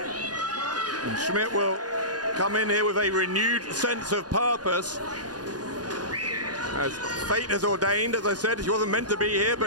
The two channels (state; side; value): late; left; 0.69 ms